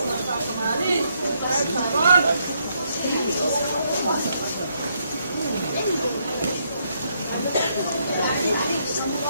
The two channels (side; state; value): both; inverted; correlation -0.75